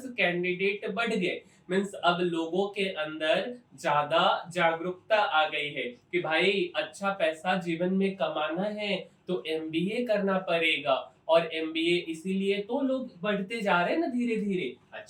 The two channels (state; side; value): identical; both; correlation 1.00